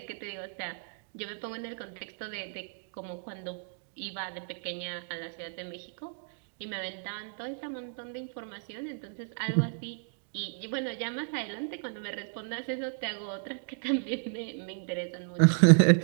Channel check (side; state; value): left; silent; digital silence